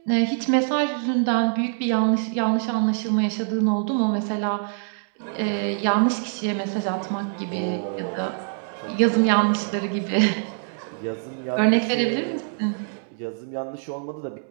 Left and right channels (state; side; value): silent; left; digital silence